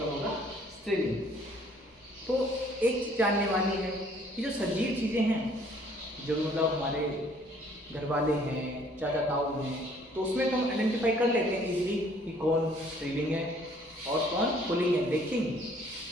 होगा स्त्रीलिंग। तो एक चीज जानने वाली है कि जो सजीव चीज़ें हैं, जो मतलब हमारे घर वाले हैं, चाचा ताऊ हैं, तो उसमें तो हम आइडेंटिफाई कर लेते हैं इजीली कि कौन स्त्रीलिंग है और कौन पुल्लिंग है। लेकिन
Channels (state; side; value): normal; both; correlation 0.59